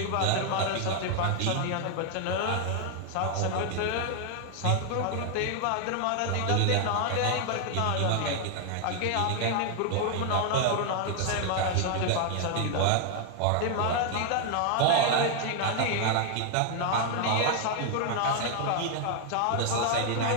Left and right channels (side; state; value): both; different; correlation 0.00